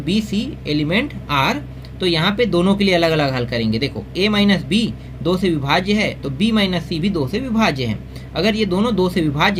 सी एलिमेंट आर, तो यहाँ पे दोनों के लिए अलग अलग हल करेंगे। देखो ए माइनस बी 2 से विभाज्य है, तो बी माइनस सी भी 2 से विभाज्य है। अगर ये दोनों 2 से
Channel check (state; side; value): identical; both; correlation 1.00